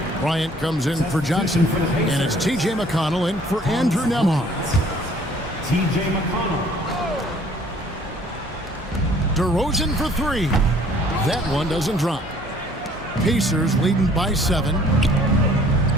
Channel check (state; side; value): normal; both; correlation 0.56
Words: Bryant comes in for Johnson. And it's T.J. McConnell in for Andrew Nembhard. T.J. McConnell. DeRozan for 3. That one doesn't drop. Pacers leading by 7.